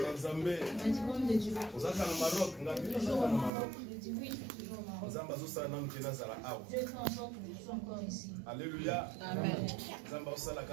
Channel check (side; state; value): left; drops out; at 3.5 s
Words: Zambé. Il m'a dit, homme de Dieu. Vous êtes au Maroc. Toujours au Maroc. Je dis oui, je suis toujours au Maroc. Dieu fait en sorte que je sois encore ici. Alléluia. Amen.